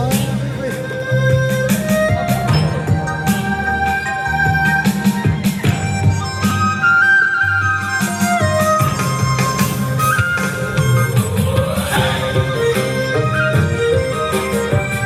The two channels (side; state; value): both; identical; correlation 1.00